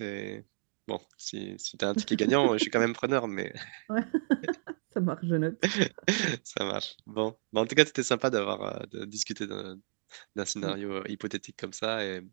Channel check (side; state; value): left; silent; digital silence